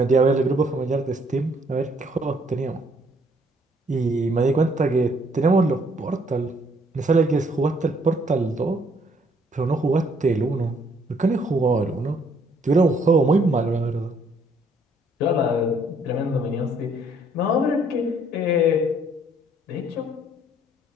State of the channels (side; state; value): both; normal; correlation 0.65